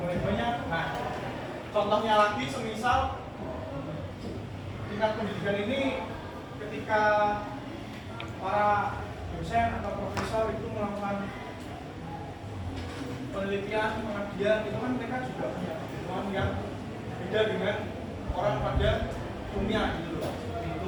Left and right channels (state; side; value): identical; both; correlation 1.00